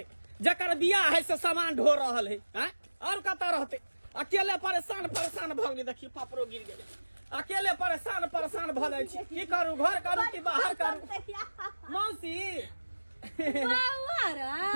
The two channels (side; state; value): both; inverted; correlation -1.00